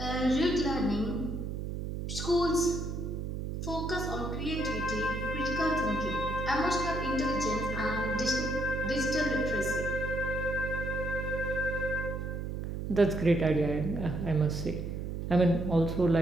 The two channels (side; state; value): right; noise; hum, 4 dB below the sound